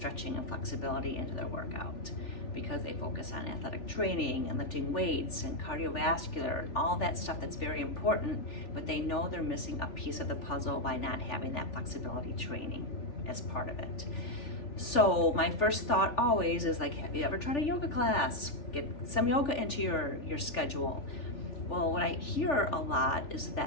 and flexibility into their workout because they focus on athletic training and lifting weights and cardiovascular and all that stuff that's very important, but they know they're missing a piece of the puzzle by not having that flexibility training as part of it. So my first thought always is like, have you ever tried a yoga class? Get some yoga into your schedule. Well, what I hear a lot is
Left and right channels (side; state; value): right; late; 3.4 ms